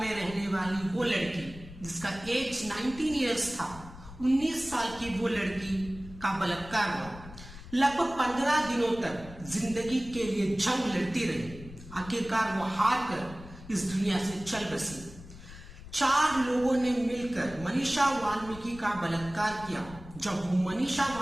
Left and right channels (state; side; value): noise; left; rumble, 16 dB below the sound